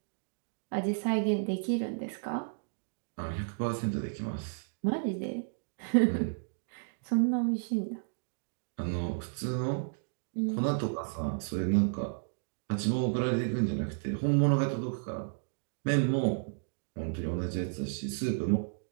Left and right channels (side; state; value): left; silent; digital silence